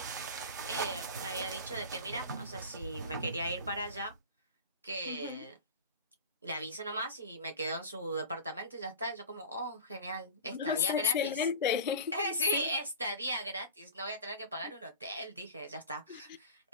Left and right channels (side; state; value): both; inverted; correlation -0.32